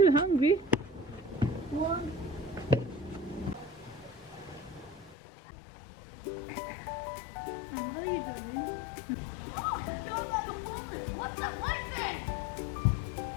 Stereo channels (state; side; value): drops out; right; at 5.2 s